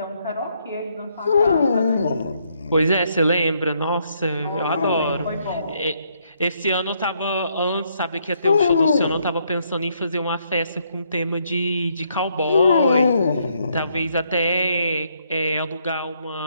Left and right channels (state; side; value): inverted; both; correlation -0.73